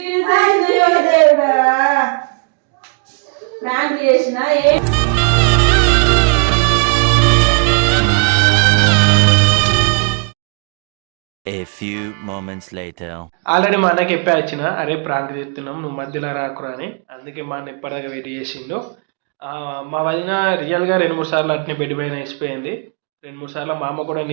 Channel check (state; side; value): quieter; left; 38.4 dB